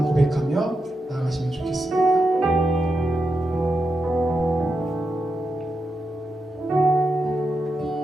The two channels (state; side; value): normal; both; correlation 0.87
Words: 고백하며 나아가시면 좋겠습니다.